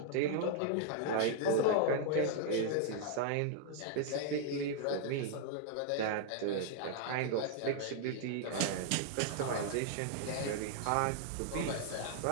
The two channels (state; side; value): different; both; correlation 0.00